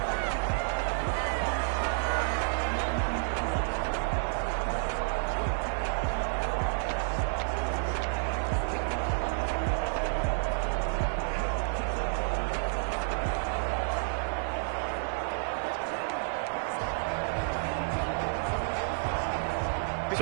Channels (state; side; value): silent; left; digital silence